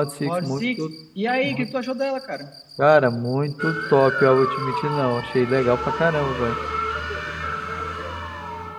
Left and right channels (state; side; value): identical; both; correlation 1.00